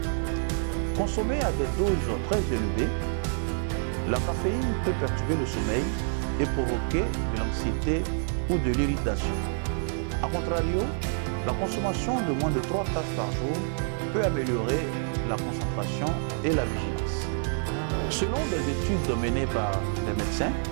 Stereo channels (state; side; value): silent; left; digital silence